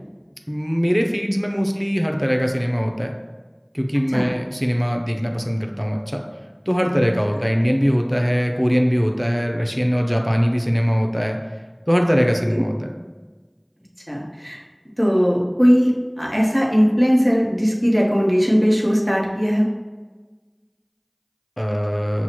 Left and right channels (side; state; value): both; identical; correlation 1.00